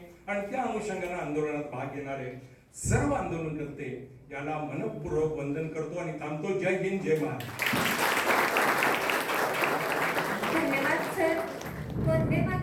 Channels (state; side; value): identical; both; correlation 1.00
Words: आणि त्या अनुषंगाने आंदोलनात भाग घेणारे सर्व आंदोलनकर्ते यांना मनपूर्वक वंदन करतो आणि थांबतो. जय हिंद, जय महाराष्ट्र. धन्यवाद सर. वंदे